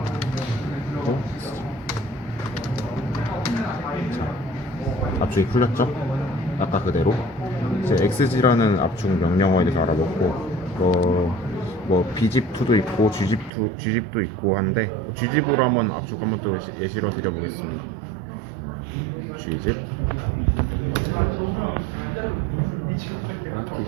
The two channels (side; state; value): left; drops out; at 13.5 s